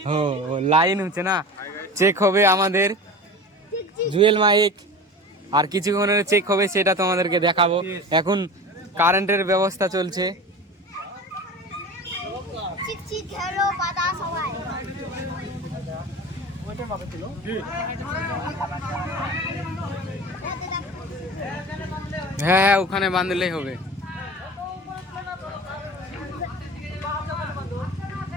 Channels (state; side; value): normal; both; correlation 0.34